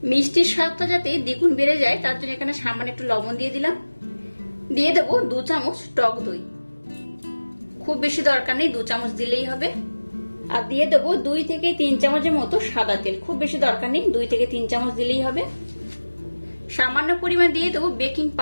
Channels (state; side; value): inverted; both; correlation -1.00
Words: মিষ্টির স্বাদটা যাতে দ্বিগুণ বেড়ে যায় তার জন্য এখানে সামান্য একটু লবণ দিয়ে দিলাম। দিয়ে দেবো 2 চামচ টক দই, খুব বেশি দরকার নেই, 2 চামচ দিলেই হবে। আর দিয়ে দেবো 2 থেকে 3 চামচের মতো সাদা তেল, খুব বেশি দরকার নেই, 2 থেকে 3 চামচ দিলেই হবে। সামান্য পরিমাণ দিয়ে দেবো বেকিং